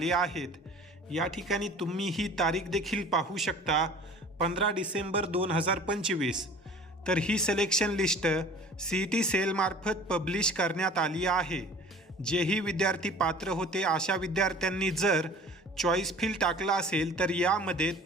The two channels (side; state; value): both; normal; correlation 0.45